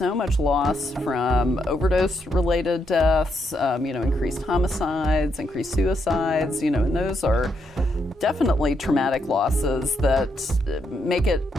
much loss from overdose-related deaths, increased homicides, increased suicides, and those are definitely traumatic losses that make it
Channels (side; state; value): both; normal; correlation 0.78